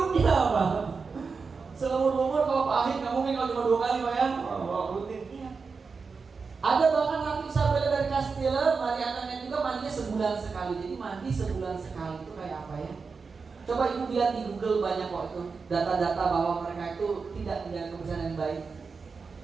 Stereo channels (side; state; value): left; quieter; 4.9 dB